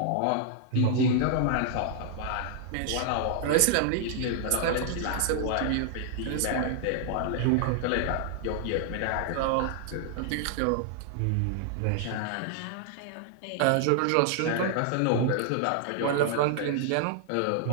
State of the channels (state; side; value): different; both; correlation 0.00